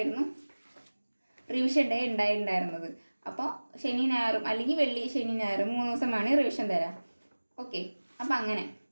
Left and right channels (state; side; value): inverted; both; correlation -1.00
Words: റിവിഷൻ ഡേ ഉണ്ടായിരുന്നത്. അപ്പോൾ ശനി ഞായറും അല്ലെങ്കിൽ വെള്ളി ശനി ഞായറും 3 ദിവസം വേണമെങ്കിൽ റിവിഷൻ തരാം. ഓക്കെ, അപ്പം അങ്ങനെ.